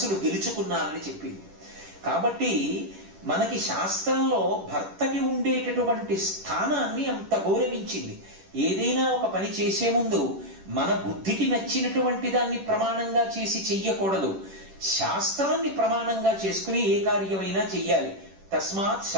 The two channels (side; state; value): left; late; 10 ms